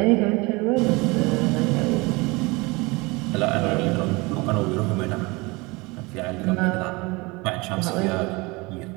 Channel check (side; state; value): left; quieter; 25.0 dB